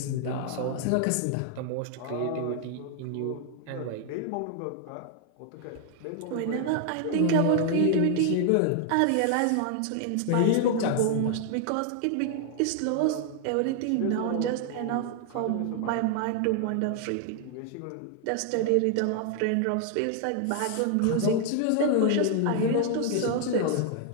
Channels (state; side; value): different; both; correlation 0.00